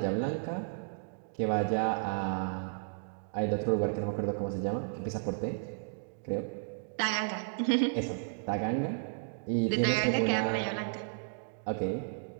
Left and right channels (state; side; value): silent; left; digital silence